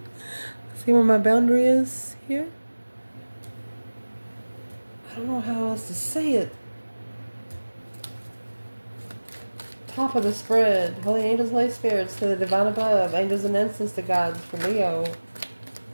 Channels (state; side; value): inverted; both; correlation -1.00